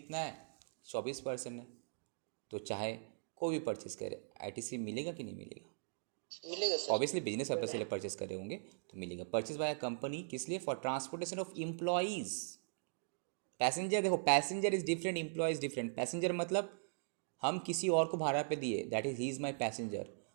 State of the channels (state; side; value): silent; left; digital silence